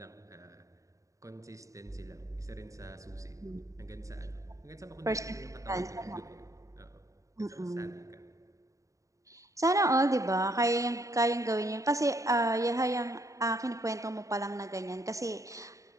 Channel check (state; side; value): late; left; 0.16 ms